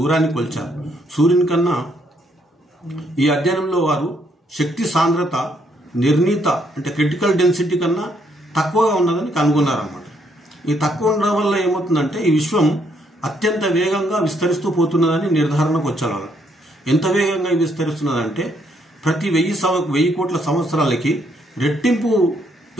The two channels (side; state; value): both; normal; correlation 0.72